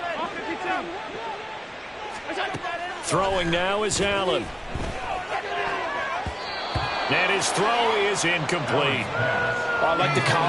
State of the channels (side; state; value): both; identical; correlation 1.00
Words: Throwing now is Allen. And his throw is incomplete. I like the